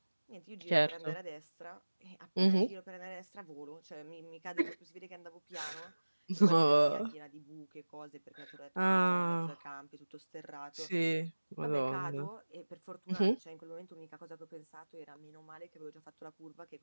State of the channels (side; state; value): both; inverted; correlation -1.00